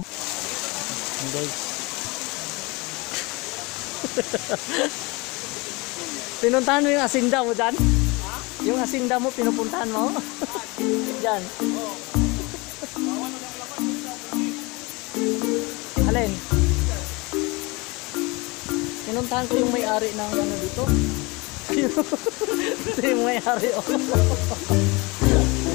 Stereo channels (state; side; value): quieter; right; 25.7 dB